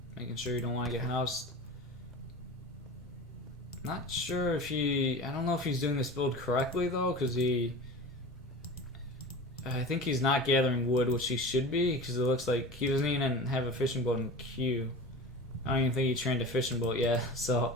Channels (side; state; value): both; normal; correlation 0.33